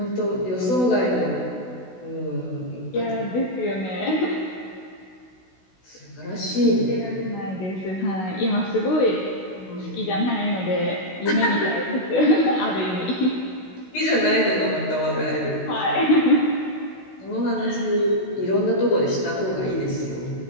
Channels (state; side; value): late; right; 16 ms